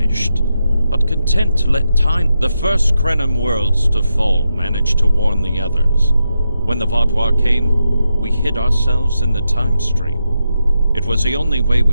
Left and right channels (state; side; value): inverted; both; correlation -0.86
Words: but content to let time. The first Krenim worlds to fall managed to warn the others. When the Vaadwaur came, we hid ourselves in the time stream. It was the only way